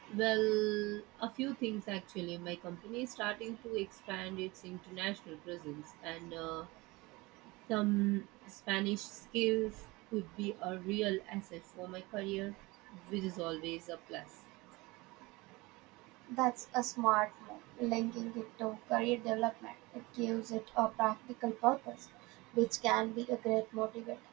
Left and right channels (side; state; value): left; quieter; 22.8 dB